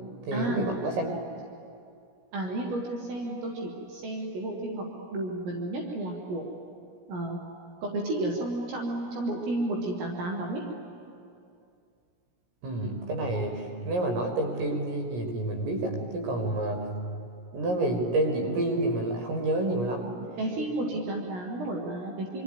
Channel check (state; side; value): late; left; 17 ms